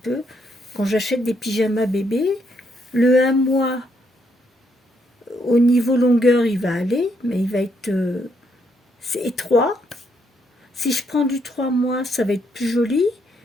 peu. Quand j'achète des pyjamas bébés, le 1 mois, au niveau longueur, il va aller, mais il va être c'est étroit. Si je prends du 3 mois, ça va être plus joli,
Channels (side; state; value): both; normal; correlation 0.75